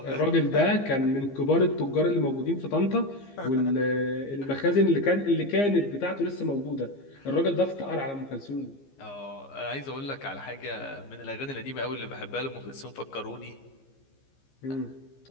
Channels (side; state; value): right; late; 15 ms